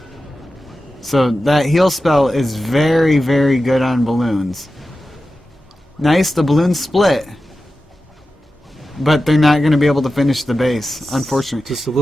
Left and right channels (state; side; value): normal; both; correlation 0.93